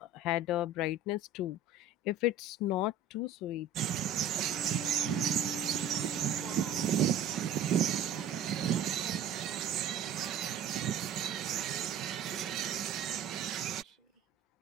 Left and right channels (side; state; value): left; quieter; 3.8 dB